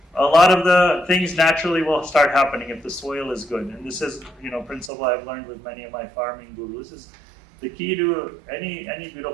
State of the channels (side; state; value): left; drops out; at 4.9 s